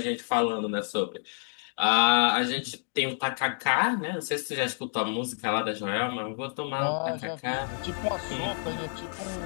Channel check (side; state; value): right; silent; 59 dB below the other